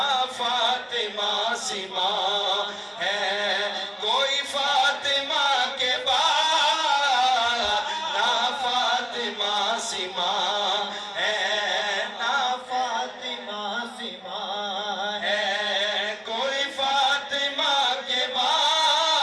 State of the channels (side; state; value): both; identical; correlation 1.00